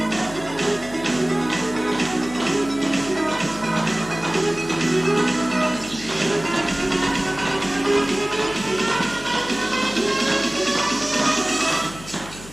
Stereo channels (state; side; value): noise; left; hum, 16 dB below the sound